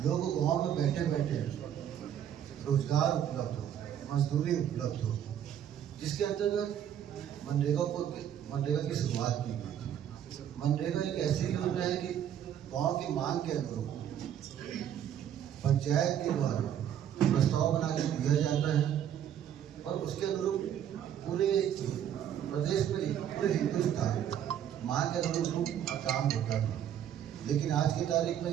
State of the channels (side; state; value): left; quieter; 9.9 dB